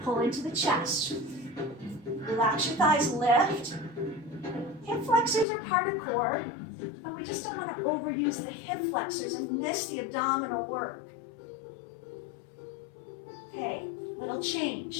Pull into the chest. Relax your thighs, lift, Hip flexors are part of core, but we just don't want to overuse the hip flexors and miss the abdominal work. Okay, little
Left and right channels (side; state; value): right; drops out; at 5.5 s